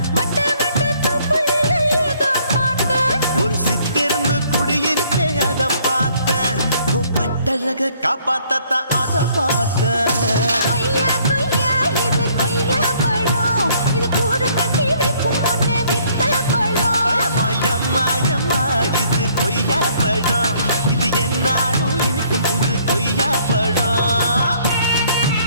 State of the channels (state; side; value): inverted; both; correlation -0.63